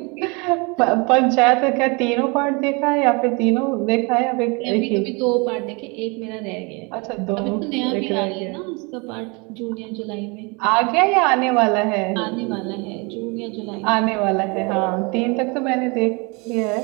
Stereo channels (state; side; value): quieter; left; 29.5 dB